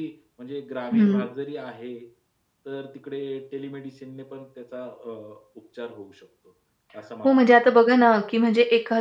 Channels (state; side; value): identical; both; correlation 1.00